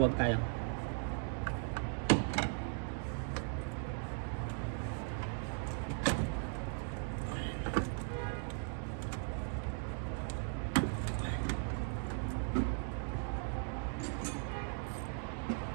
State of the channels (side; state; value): left; silent; 52 dB below the other